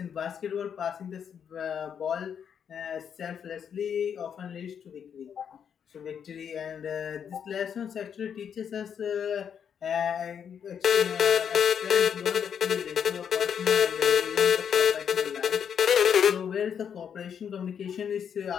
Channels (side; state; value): right; quieter; 7.8 dB